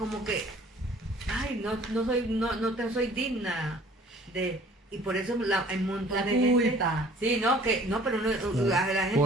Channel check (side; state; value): both; normal; correlation 0.52